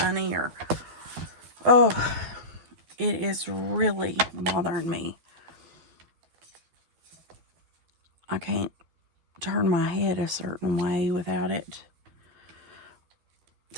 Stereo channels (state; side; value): late; left; 12 ms